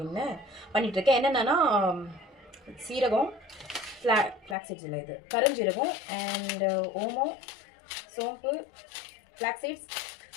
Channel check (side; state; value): right; drops out; at 4.5 s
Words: பண்ணிகிட்ருக்கேன். என்னென்னா சீரகம், ஃப்ளாக் சீட்ஸ் இல்லை, இது கருஞ்சீரகம் அண்டு ஓமம், சோம்பு, ஃப்ளாக் சீட்ஸ்,